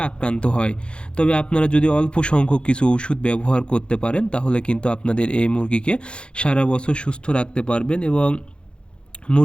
আক্রান্ত হয়। তবে আপনারা যদি অল্প সংখ্যক কিছু ওষুধ ব্যবহার করতে পারেন, তাহলে কিন্তু আপনাদের এই মুরগিকে সারা বছর সুস্থ রাখতে পারবেন এবং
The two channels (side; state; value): right; late; 0.055 ms